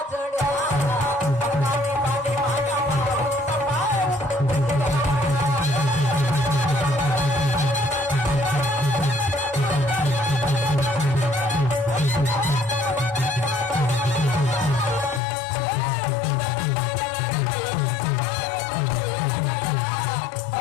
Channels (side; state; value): right; drops out; at 15.2 s